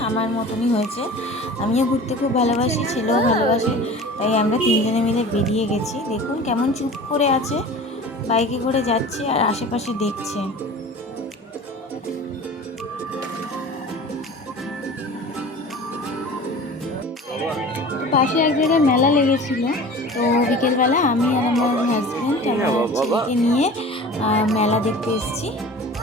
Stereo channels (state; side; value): normal; both; correlation 0.39